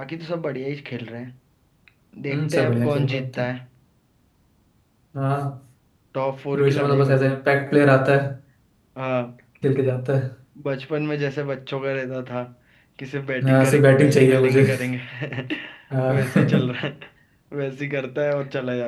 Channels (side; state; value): both; identical; correlation 1.00